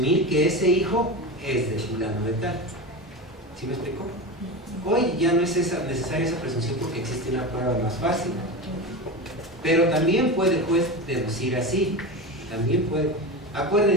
que ese hijo es de fulano de tal. ¿Sí me explico? Hoy ya no es necesaria esa presunción porque existe una prueba más fácil. Pero también puede el juez deducir así. También puede.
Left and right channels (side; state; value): both; normal; correlation 0.23